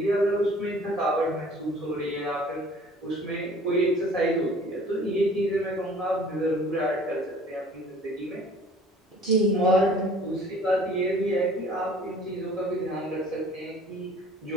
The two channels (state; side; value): normal; both; correlation 0.51